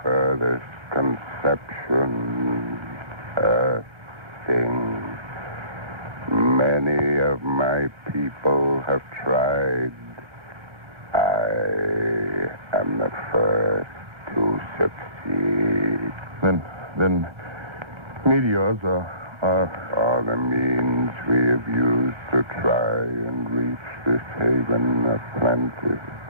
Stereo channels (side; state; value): left; late; 1.2 ms